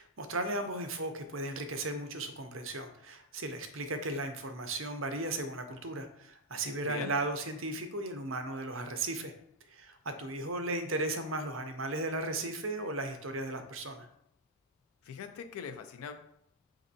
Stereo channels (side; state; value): both; normal; correlation -0.04